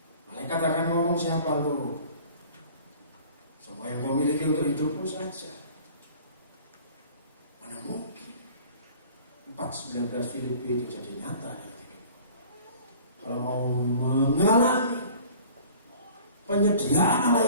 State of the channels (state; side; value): inverted; both; correlation -0.48